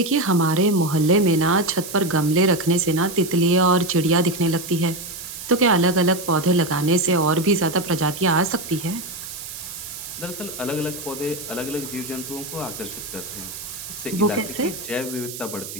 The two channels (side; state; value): right; noise; hiss, 10 dB below the sound